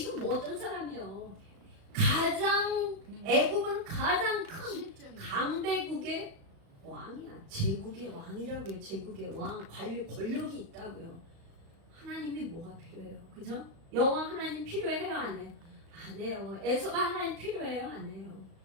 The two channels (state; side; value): late; left; 36 ms